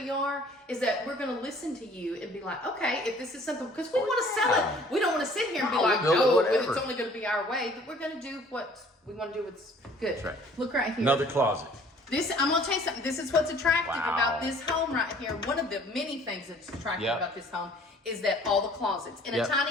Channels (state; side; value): normal; both; correlation 0.54